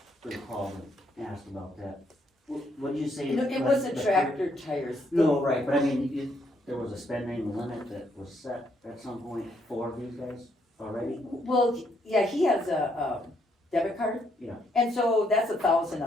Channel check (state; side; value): normal; both; correlation 0.73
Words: recall and asked about that, what did you say? you know, it like, was the the- tractor tires. No, right, but I mean, there was a spending limit that was set at some point for these guys already? Well, yeah, he has a debit card. Yeah. And so that's 1,000